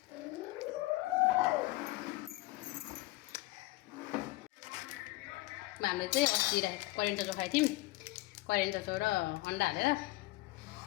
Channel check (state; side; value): quieter; right; 19.9 dB